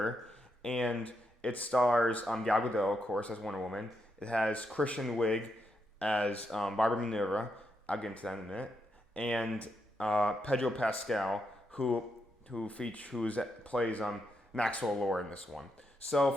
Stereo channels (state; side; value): normal; both; correlation 0.82